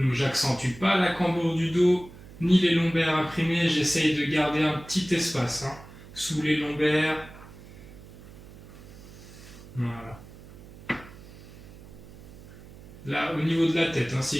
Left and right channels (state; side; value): noise; right; hum, 18 dB below the sound